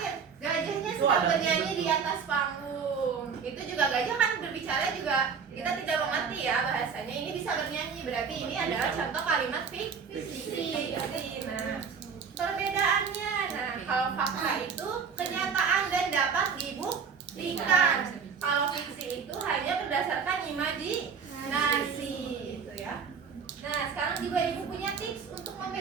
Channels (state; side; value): quieter; left; 6.1 dB